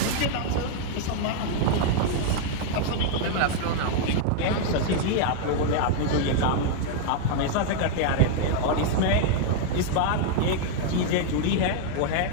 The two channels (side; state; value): both; different; correlation 0.00